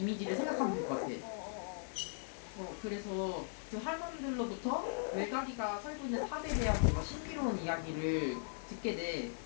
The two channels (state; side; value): silent; right; 52 dB below the other